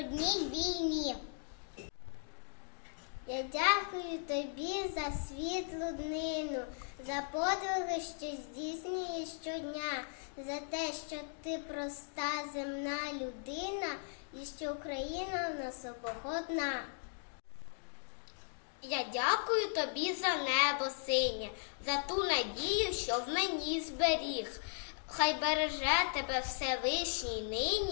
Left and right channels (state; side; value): silent; right; digital silence